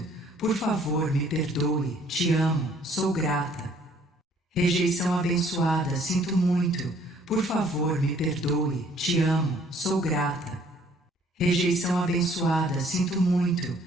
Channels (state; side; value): normal; both; correlation 0.60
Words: Por favor, me perdoe. Te amo, sou grata. Rejeição abençoada, sinto muito. Por favor, me perdoe. Te amo, sou grata. Rejeição abençoada, sinto muito.